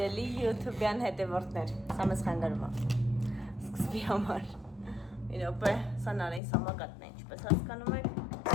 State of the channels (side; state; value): right; drops out; at 6.4 s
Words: YouTube-յան հետևորդներ, սա մեզ խանգարում է, սկզբի համար, մի րոպե, սա նարին սամակատն է, ինչպես հասկանում եք,